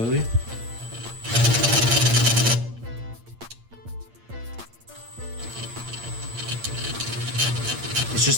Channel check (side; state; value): left; late; 8.7 ms